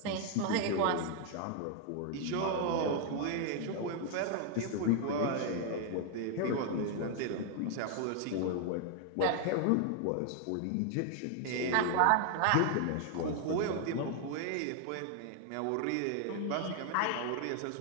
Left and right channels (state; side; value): different; both; correlation 0.00